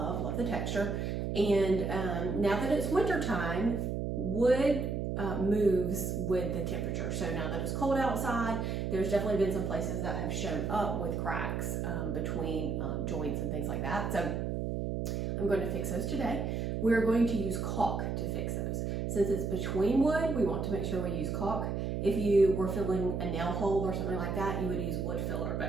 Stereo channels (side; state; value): right; noise; hum, 1 dB below the sound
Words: the texture. And now that it's winter time, wood moves with the temperature. So now that it's cold outside, there's definitely been some places that have shown up with cracks between joints and things like that. So I'm going to fix those today. We're going to use caulk to fix those. Since it's between wood, we want to make sure we use caulk. If you were filling a nail hole or something like that, you would use wood filler,